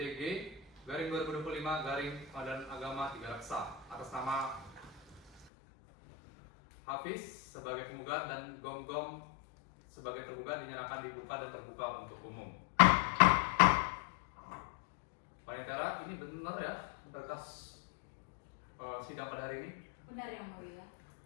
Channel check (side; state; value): right; drops out; at 5.5 s